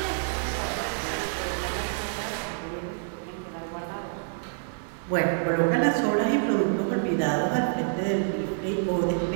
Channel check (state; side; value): silent; left; digital silence